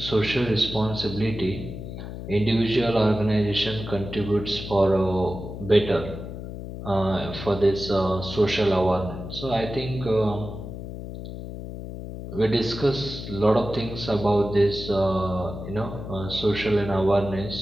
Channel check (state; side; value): noise; left; hum, 9 dB below the sound